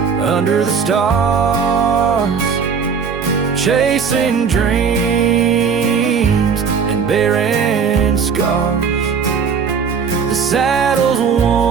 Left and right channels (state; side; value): quieter; left; 6.3 dB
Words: under the stars, chasing dreams and bearing scars. The saddle's